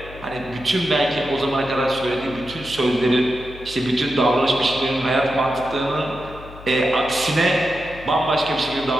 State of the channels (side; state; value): left; noise; hum, 17 dB below the sound